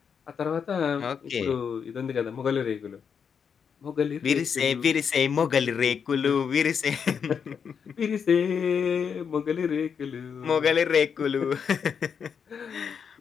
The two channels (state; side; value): quieter; right; 6.8 dB